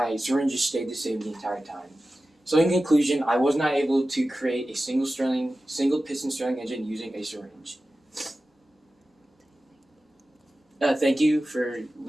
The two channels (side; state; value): both; normal; correlation 0.94